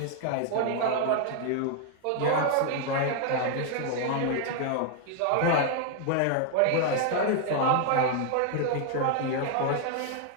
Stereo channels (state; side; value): different; both; correlation 0.00